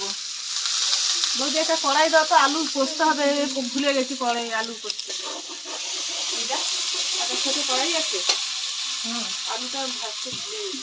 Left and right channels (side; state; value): both; identical; correlation 1.00